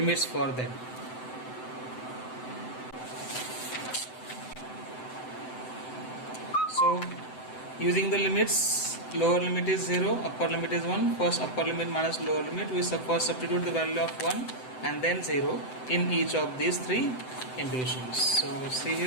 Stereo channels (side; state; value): right; late; 7.8 ms